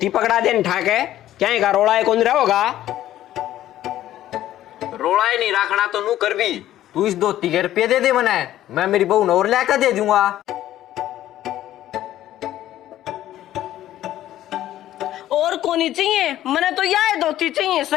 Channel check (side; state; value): right; quieter; 13.1 dB